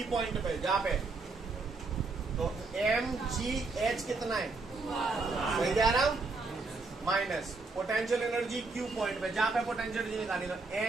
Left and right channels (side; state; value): left; quieter; 3.8 dB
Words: पॉइंट पे, जहाँ पे तो एम जी एच कितना है? सही जा रहा हूँ? Minus potential energy Q point पे, जहाँ पे पोटेंशियल एनर्जी निकालनी, तो